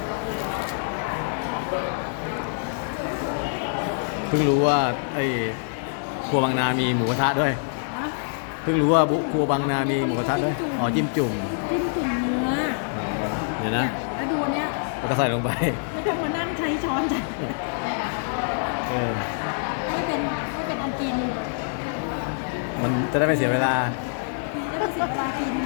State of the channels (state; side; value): silent; right; digital silence